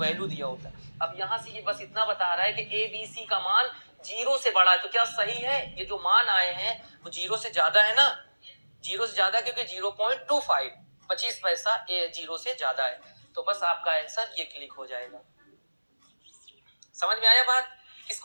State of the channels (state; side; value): inverted; both; correlation -1.00